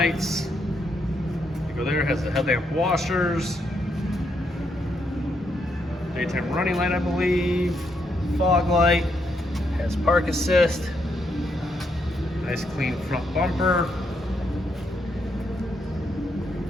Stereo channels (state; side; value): normal; both; correlation 0.77